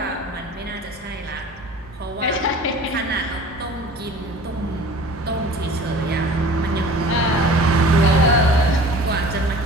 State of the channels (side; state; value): both; normal; correlation 0.43